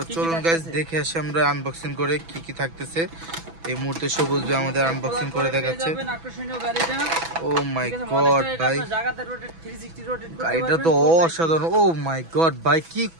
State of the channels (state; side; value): late; left; 6.1 ms